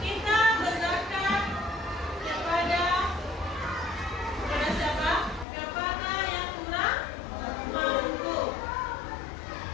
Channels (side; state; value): right; drops out; at 5.5 s